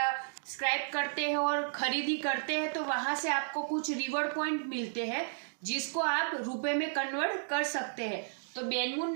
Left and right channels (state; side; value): silent; left; digital silence